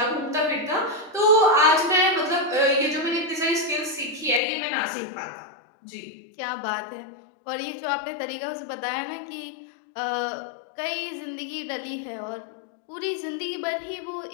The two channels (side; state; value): right; drops out; at 4.4 s